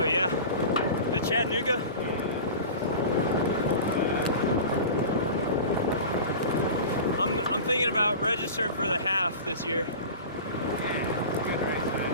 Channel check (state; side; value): inverted; both; correlation -0.34